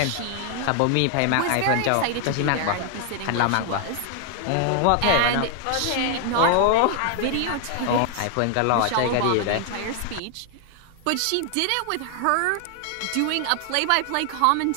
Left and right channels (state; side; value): different; both; correlation 0.00